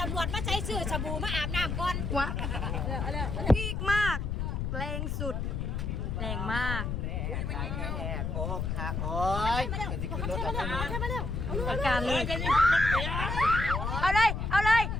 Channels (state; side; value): noise; left; rumble, 2 dB below the sound